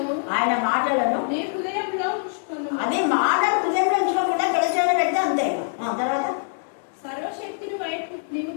మాటలను అదే మాటలు హృదయంలో ఉంచుకోకుండా గడిచేలో పెడితే అంతే. తర్వాత సర్వశక్తిని వైపు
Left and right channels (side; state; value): right; silent; digital silence